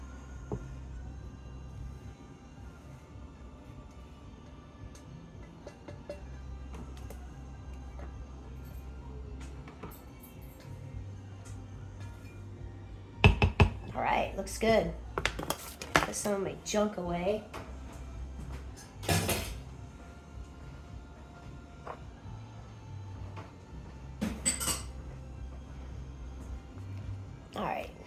All right, looks good. Put some of my junk away. All right.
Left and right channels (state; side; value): identical; both; correlation 1.00